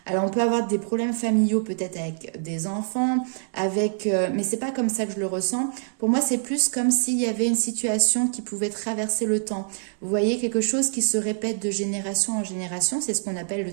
Alors on peut avoir des problèmes familiaux peut-être avec des enfants, avec, mais c'est pas comme ça que je le ressens. Pour moi, c'est plus comme s'il y avait une situation qui pouvait traverser le temps. Vous voyez, quelque chose qui se répète de génération en génération, c'est ce qu'on appelle le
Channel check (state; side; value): silent; left; digital silence